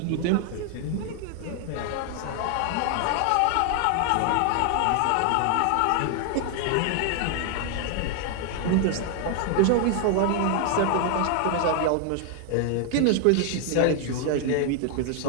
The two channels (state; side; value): different; both; correlation 0.00